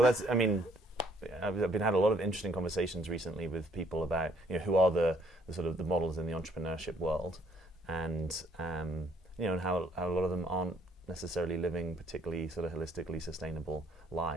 I've been had a lot of interesting conversations recently with people about who are the sort of the models in the entrepreneurship world, and and how a lot of them aren't necessarily living particularly sort of holistically sustainable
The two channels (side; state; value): both; normal; correlation 0.65